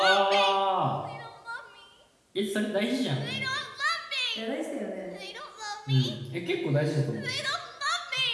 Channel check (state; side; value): identical; both; correlation 1.00